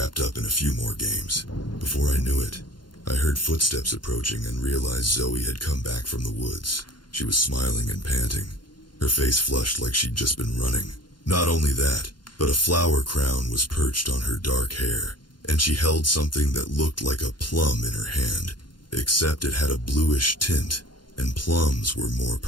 up in a few more games. Before I knew it, I heard footsteps approaching and realized Zoe had come back from the woods. She was smiling and panting, her face flushed like she'd just been running. Not only that, but a flower crown was perched on her dark hair, and she held something that looked like a plum in her hand, except it had a bluish tint, and plums were more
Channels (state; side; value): late; right; 0.71 ms